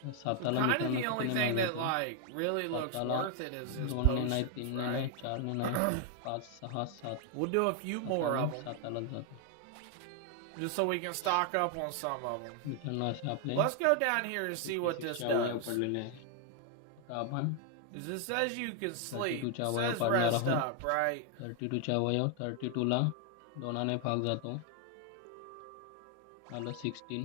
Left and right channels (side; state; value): both; different; correlation 0.00